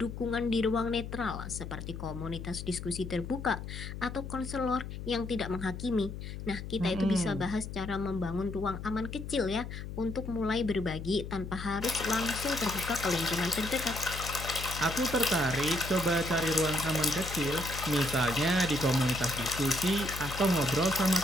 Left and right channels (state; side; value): noise; left; hum, 8 dB below the sound